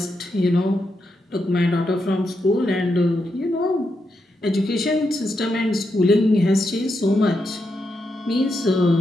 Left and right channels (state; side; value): normal; both; correlation 0.84